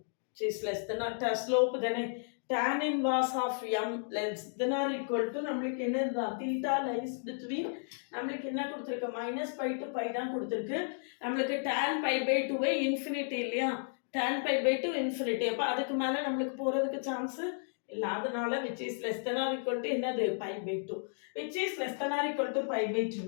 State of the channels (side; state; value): right; silent; digital silence